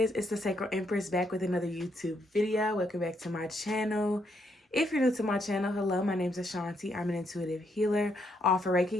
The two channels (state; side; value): normal; both; correlation 0.75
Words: it's the Sacred Empress back with another YouTube video. Welcome back to my channel. If you're new to my channel, hello, my name is Ashanti. I'm an intuitive healer. I offer